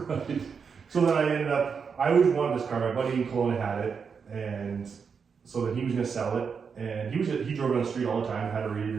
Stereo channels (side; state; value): left; quieter; 6.0 dB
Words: so then I ended up, I always wanted this car. My buddy in Kelowna had it, and so then he was gonna sell it, and he drove it on the street all the time, had a read